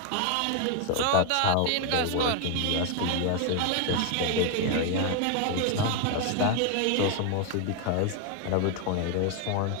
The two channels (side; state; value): both; different; correlation 0.01